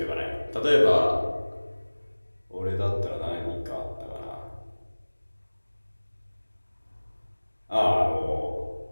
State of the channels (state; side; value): inverted; both; correlation -1.00